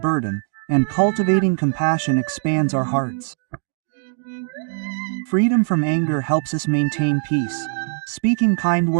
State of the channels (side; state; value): left; silent; digital silence